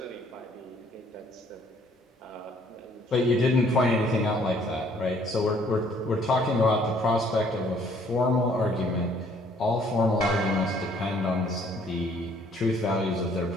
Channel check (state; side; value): normal; both; correlation 0.62